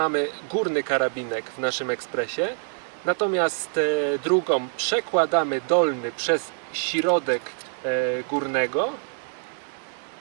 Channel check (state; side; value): silent; left; 62 dB below the other